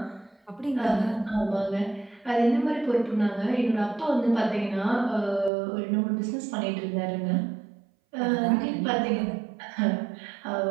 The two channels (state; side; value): drops out; left; at 5.5 s